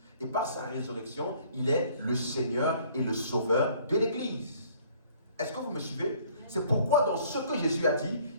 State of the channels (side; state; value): both; inverted; correlation -0.58